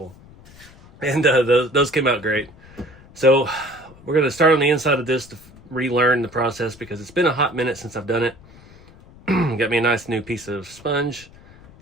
And those came out great. So we're going to start on the inside of this to relearn the process because it's been a hot minute since I've done it. Got me a nice new piece of sponge.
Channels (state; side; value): noise; left; rumble, 23 dB below the sound